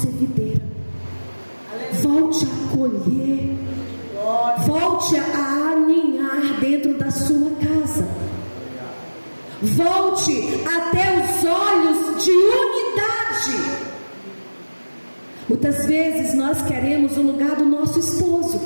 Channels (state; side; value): inverted; both; correlation -1.00